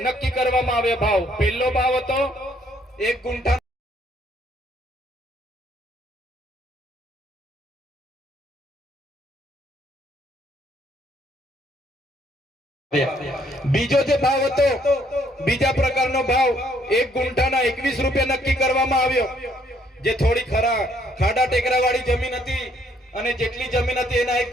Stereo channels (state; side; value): normal; both; correlation 0.67